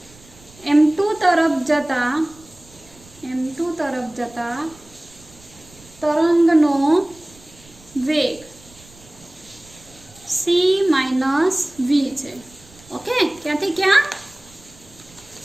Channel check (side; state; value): right; noise; rumble, 25 dB below the sound